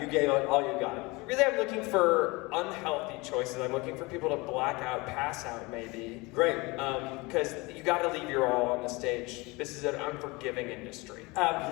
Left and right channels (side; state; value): right; quieter; 24.6 dB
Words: You gave it all you got. Really, I'm looking for unhealthy choices. I'm looking for people to black out, pass out, maybe. Great. Because you got to leave your all on the stage. This is an unforgiving industry.